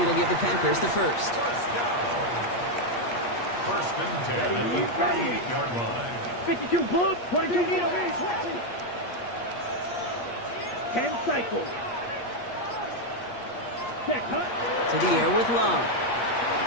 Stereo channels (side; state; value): right; late; 8.4 ms